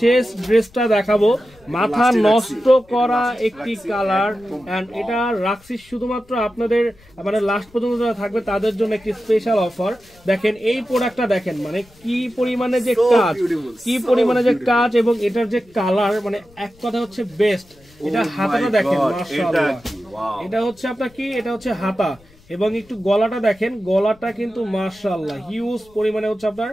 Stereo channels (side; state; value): left; noise; rumble, 28 dB below the sound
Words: ড্রেসটা দেখাবো, মাথা নষ্ট করা একটি কালার, এন্ড এটা রাখছি শুধুমাত্র আপনাদের মানে লাস্ট পর্যন্ত যারা থাকবে তাদের জন্য একটি স্পেশাল অফার। দেখেন এই প্রোডাক্টটা দেখেন, মানে কি পরিমাণে যে কাজ, কি পরিমাণে যে কাজ, এবং এটার যে কালার, মানে এক কথা হচ্ছে বেস্ট। এটা হাতাটা দেখেন, মাশাআল্লাহ, এটা হচ্ছে আপনার কি, এটা হচ্ছে হাতা, এবং একটু গলাটা দেখেন, গলাটা কিন্তু মাশাআল্লাহ হিউজ পরিমাণে হচ্ছে আপনার